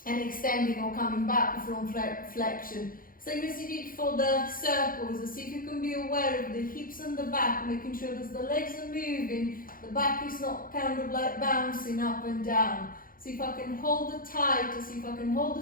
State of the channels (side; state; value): right; late; 0.41 ms